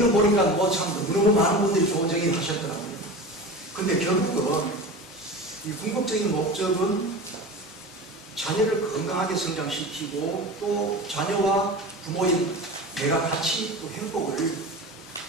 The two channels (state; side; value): normal; both; correlation 0.31